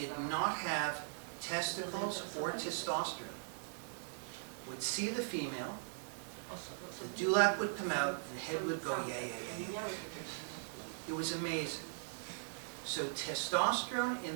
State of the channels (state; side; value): silent; left; digital silence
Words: not have testicles or testosterone would see the female, the dewlap would come out, and the head would go, yeah, yeah, yeah, yeah. It was amazing. So testosterone